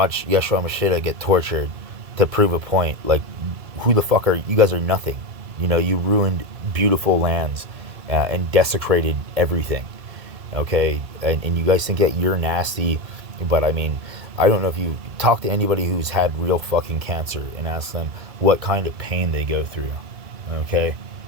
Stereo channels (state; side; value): late; left; 2.3 ms